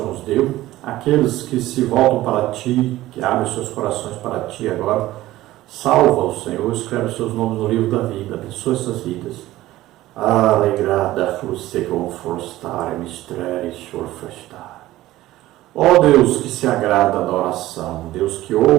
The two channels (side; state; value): left; quieter; 16.0 dB